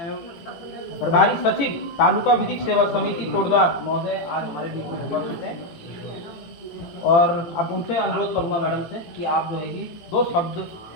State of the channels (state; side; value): late; right; 18 ms